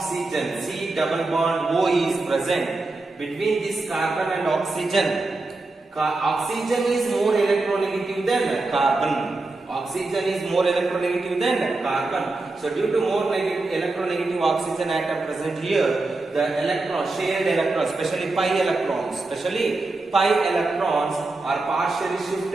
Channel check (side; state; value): left; quieter; 3.2 dB